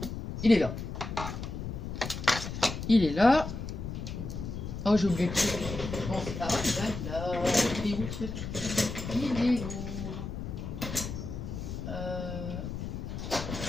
Il est là. Il est là. Oh, j'ai oublié le truc. Bon, ah, là. Il est où le truc? Il est où?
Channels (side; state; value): left; noise; rumble, 6 dB below the sound